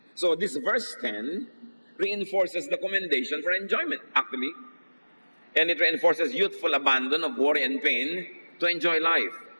So this verse 10 reinforces the commendation for enjoyment, actually. And it reinforces youthful abandon of worry and pain to enjoy life.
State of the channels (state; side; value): inverted; both; correlation -1.00